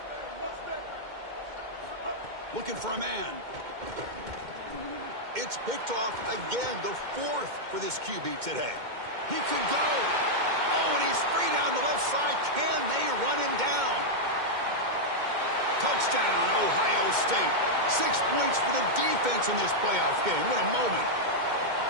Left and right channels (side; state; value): left; late; 2.1 ms